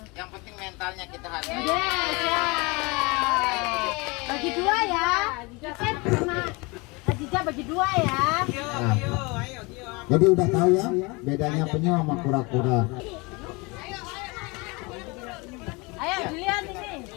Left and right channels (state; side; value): quieter; right; 26.9 dB